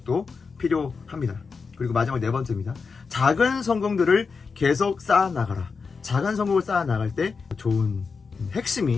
필요합니다. 그리고 마지막 네 번째입니다. 작은 성공들을 계속 쌓아나가라. 작은 성공을 쌓아 나갈 때 좋은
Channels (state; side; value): quieter; right; 5.0 dB